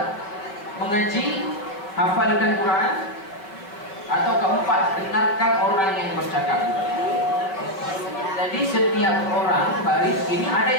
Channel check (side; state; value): right; late; 5.1 ms